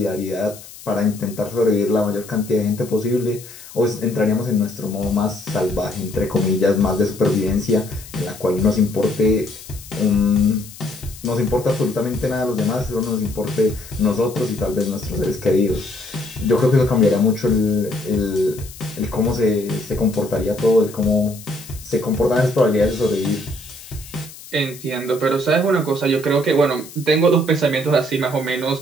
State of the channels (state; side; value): noise; left; hiss, 17 dB below the sound